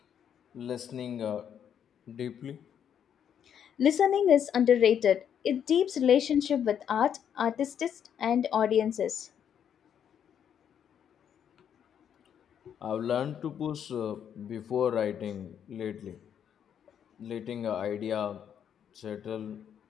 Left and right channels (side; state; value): right; quieter; 8.7 dB